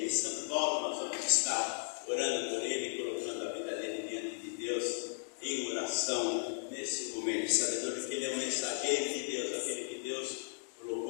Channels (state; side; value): silent; right; digital silence